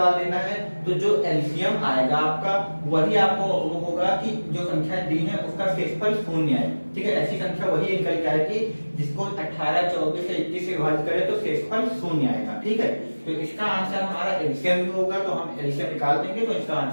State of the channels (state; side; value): inverted; both; correlation -1.00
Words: देना है। तो जो एलसीएम आएगा आपका वही आपको वो होगा कि जो संख्या दी है उसका शेषफल शून्य है। ठीक है, ऐसी संख्या वही निकल के आएगी जिसको 18, 24 से 21 से विभाजित करें तो शेषफल शून्य आएगा। ठीक है, तो इसका आंसर हमारा एलसीएम भी होगा, तो हम एलसीएम निकाल देंगे तो इसका